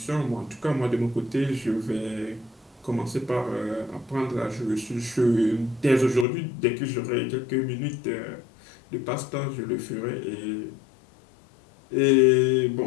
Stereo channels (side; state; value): right; drops out; at 6.2 s